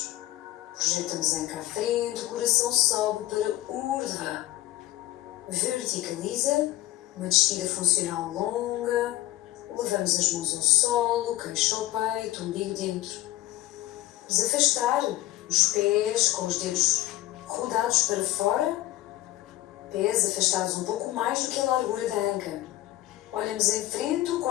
projetamos a anca à frente, o coração sobe para Urdhva. Verticaliza, Uma descida funcional longa. Levamos as mãos ao solo, queixo ao peito, umbigo dentro. Vamos afastar os pés com os dedos rodados para fora. Pés afastados um pouco mais do que a largura da anca. Olhamos em frente, o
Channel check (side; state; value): right; quieter; 15.8 dB